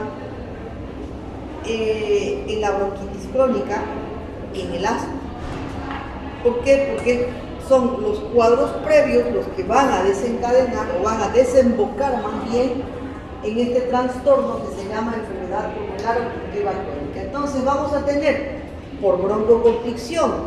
en la bronquitis crónica, en el asma. ¿Por qué? Porque son los cuadros previos los que van a desencadenar o van a desembocar más bien en este trastorno que se llama enfermedad pulmonar obstructiva crónica. Entonces vamos a tener por broncoconstricción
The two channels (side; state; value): both; identical; correlation 1.00